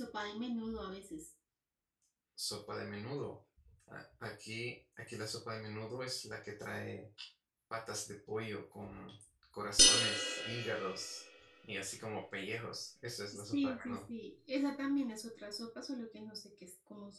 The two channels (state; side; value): identical; both; correlation 1.00